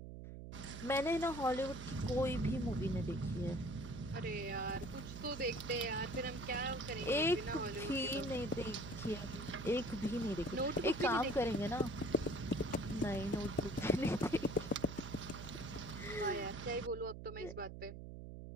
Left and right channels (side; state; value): right; noise; hum, 10 dB below the sound